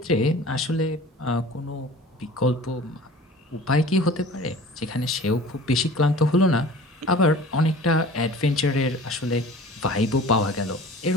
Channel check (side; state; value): both; normal; correlation 0.43